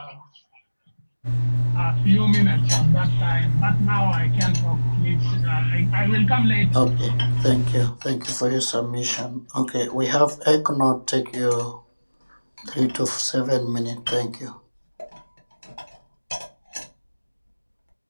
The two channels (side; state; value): both; inverted; correlation -1.00